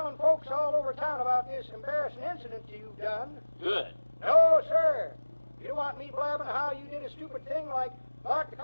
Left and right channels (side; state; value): both; inverted; correlation -1.00